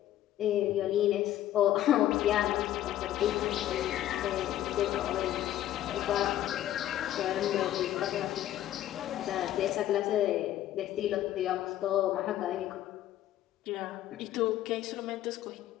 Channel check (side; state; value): right; quieter; 12.9 dB